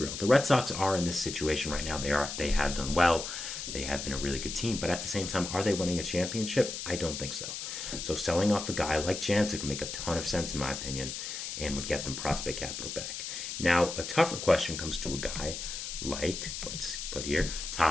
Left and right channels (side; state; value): left; noise; hiss, 6 dB below the sound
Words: the Red Sox are in this situation right now. They have done well. They have been a really good team, but at the same time, are they winning a championship? I don't think so. So selling off a guy like Jansen would make a ton of sense in my opinion and would get them prospect capital back. Now, a tougher question comes to a guy like, let's put here,